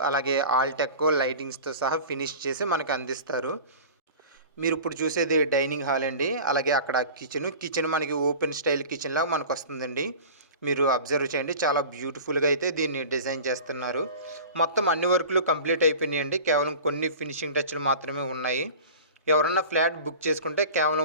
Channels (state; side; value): inverted; both; correlation -0.38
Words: అలాగే ఆల్టెక్ లైటింగ్స్తో సహా ఫినిష్ చేసి మనకి అందిస్తారు. మీరు ఇప్పుడు చూసేది డైనింగ్ హాల్ అండి. అలాగే అక్కడ కిచెన్ మనకి ఓపెన్ స్టైల్ కిచెన్ లాగా మనకు వస్తుందండి. మీరు అబ్జర్వ్ చేయండి, చాలా బ్యూటిఫుల్గా అయితే దీన్ని డిజైన్ చేస్తున్నారు. మొత్తం అన్ని వర్కులు కంప్లీట్ అయిపోయినాయండి. కేవలం కొన్ని ఫినిషింగ్ టచ్లు మాత్రమే ఉన్నాయి. ఎవరన్నా ఫ్లాట్ బుక్ చేసుకుంటే